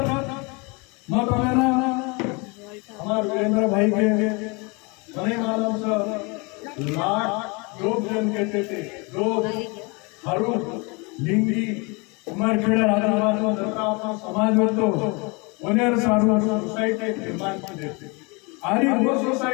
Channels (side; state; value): right; quieter; 29.4 dB